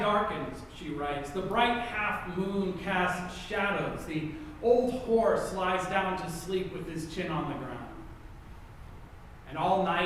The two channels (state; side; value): identical; both; correlation 1.00